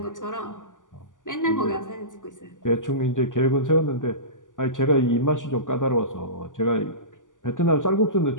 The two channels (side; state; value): right; late; 0.87 ms